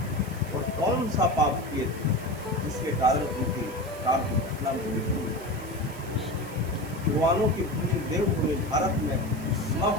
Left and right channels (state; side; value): noise; right; hiss, 19 dB below the sound